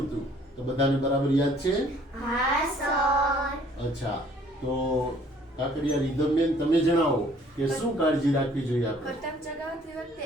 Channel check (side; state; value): both; normal; correlation 0.58